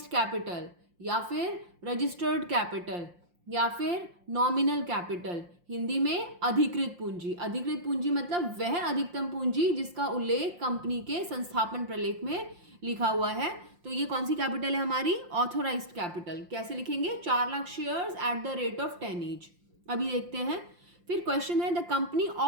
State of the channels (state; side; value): late; left; 5.7 ms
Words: कैपिटल या फिर रजिस्टर्ड कैपिटल या फिर नॉमिनल कैपिटल। हिंदी में अधिकृत पूंजी। अधिकृत पूंजी मतलब वह अधिकतम पूंजी जिसका उल्लेख कंपनी के संस्थापन प्रलेख में लिखा हुआ है। तो ये कौन सी कैपिटल है हमारी? Authorised capital. कैसे लिखेंगे? 4 lakh shares at the rate of 10 each. अभी देखते हैं। फिर क्वेश्चन है, the company